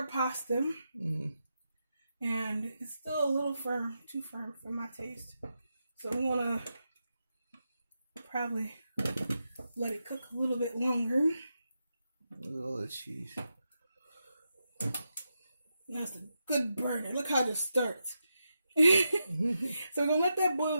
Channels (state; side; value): inverted; both; correlation -0.87